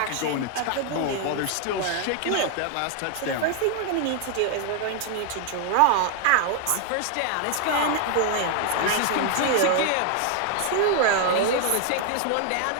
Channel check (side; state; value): both; different; correlation 0.00